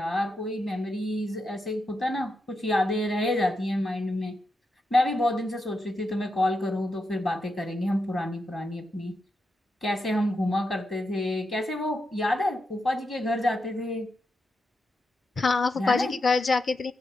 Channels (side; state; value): both; normal; correlation 0.86